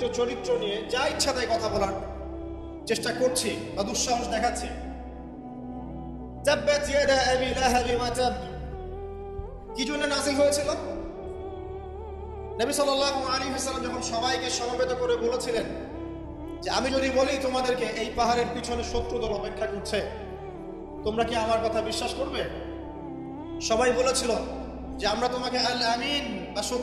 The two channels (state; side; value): identical; both; correlation 1.00